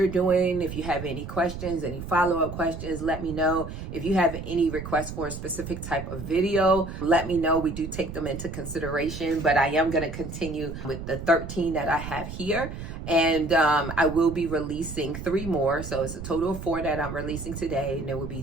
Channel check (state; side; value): noise; right; rumble, 9 dB below the sound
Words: doing. If you have any questions, any follow-up questions, let me know. If you have any requests for a specific type of video, let me know. We do take them into consideration, but I am going to continue with the 13 that I have here. And I will be releasing 3 more. So it's a total of 4 that I'm releasing today. And there will be